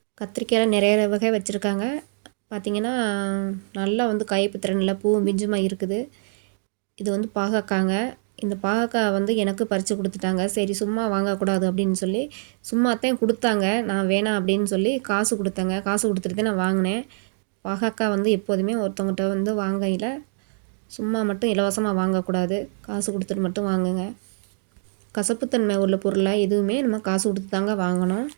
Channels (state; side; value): silent; left; digital silence